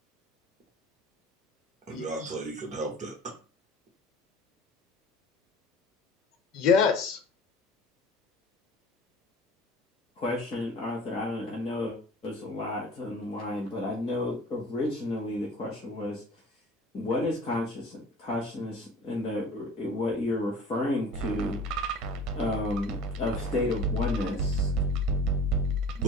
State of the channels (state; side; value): normal; both; correlation 0.43